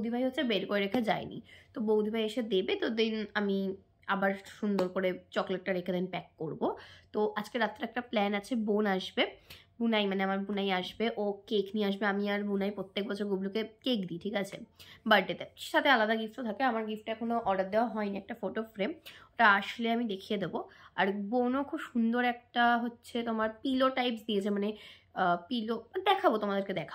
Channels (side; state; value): both; identical; correlation 1.00